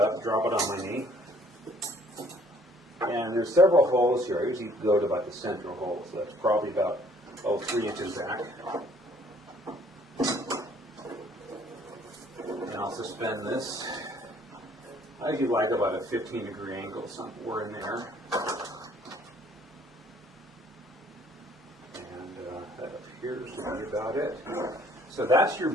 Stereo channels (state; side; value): normal; both; correlation 0.60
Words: drop it on my knee. And there's several holes here. I usually go to about the central hole. So that's probably about 3 inches back. And I'll suspend this. I usually like about a 15-degree angle somewhere in there. And that appears to be about it. So that's your